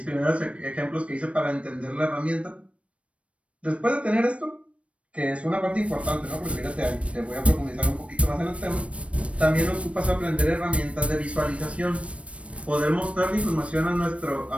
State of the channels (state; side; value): late; left; 0.062 ms